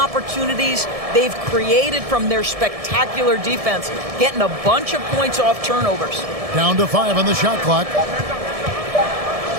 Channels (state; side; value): late; left; 1.7 ms